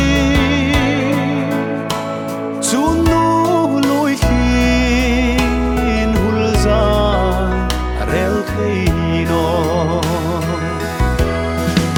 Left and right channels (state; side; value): identical; both; correlation 1.00